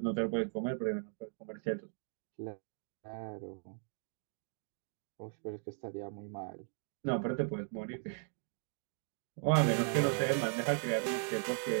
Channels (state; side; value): silent; left; 53 dB below the other